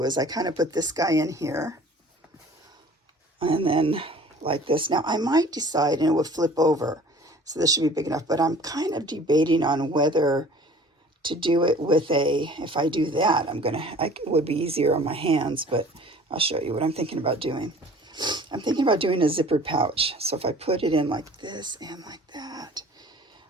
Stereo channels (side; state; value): both; normal; correlation 0.48